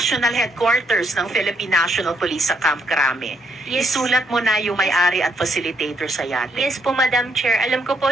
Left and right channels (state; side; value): normal; both; correlation 0.74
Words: headquarters ng Philippine National Police sa Camp Crame. Yes. Isulat mo na yung may-ari at facilitator sa yate. Yes po, Madam Chair. Alam ko po,